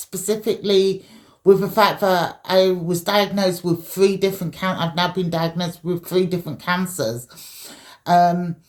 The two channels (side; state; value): both; identical; correlation 1.00